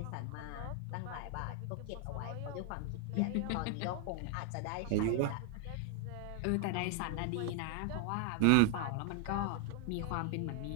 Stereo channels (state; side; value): different; both; correlation 0.00